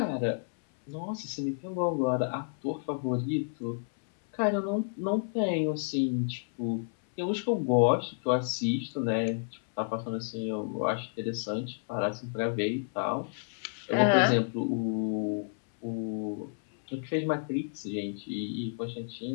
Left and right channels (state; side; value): silent; right; 57 dB below the other